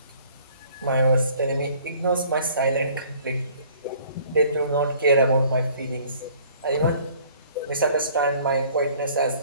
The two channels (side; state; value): both; inverted; correlation -0.54